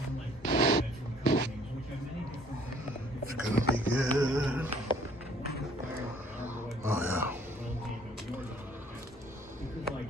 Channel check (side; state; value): both; normal; correlation 0.58